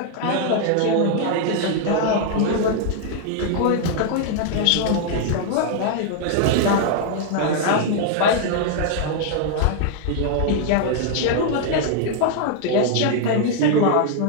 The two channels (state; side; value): different; both; correlation 0.00